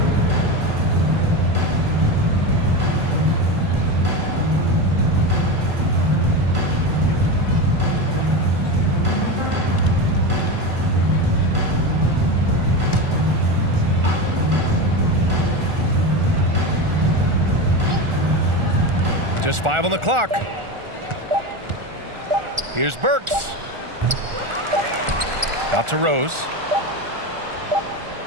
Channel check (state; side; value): late; left; 1.4 ms